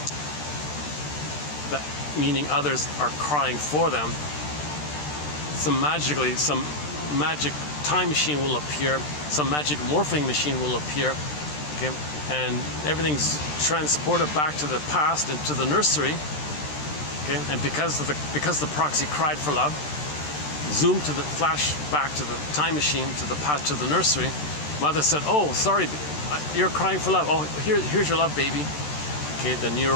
that meaning others are crying for them, some magic time machine will appear, some magic morphing machine will appear, okay, and everything's transported back to the past and to the nursery. Okay, and because the proxy cried for love, zoom to the flash back to the time machine, to the past, to the nursery. Mother said, "Oh, sorry, you're crying for love. Oh, here's your love, baby." Okay, the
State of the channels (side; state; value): right; late; 13 ms